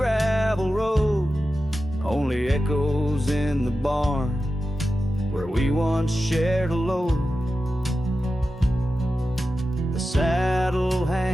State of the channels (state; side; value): normal; both; correlation 0.92